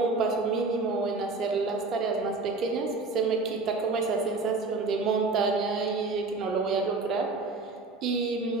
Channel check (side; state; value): left; quieter; 3.7 dB